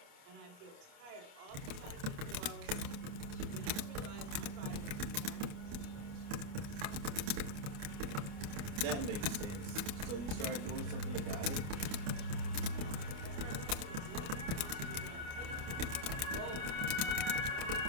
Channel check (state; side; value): late; left; 28 ms